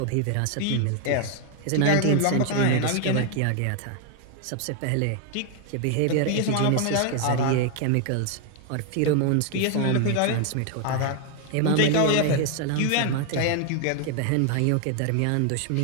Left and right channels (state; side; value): different; both; correlation 0.01